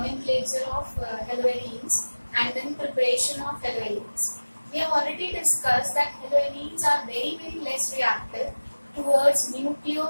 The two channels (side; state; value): both; inverted; correlation -1.00